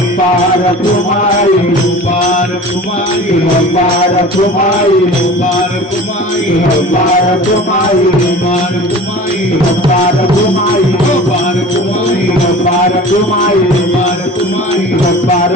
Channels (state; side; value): normal; both; correlation 0.39